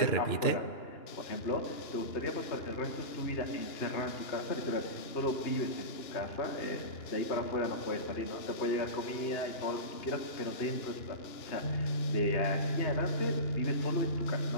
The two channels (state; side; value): late; right; 2.9 ms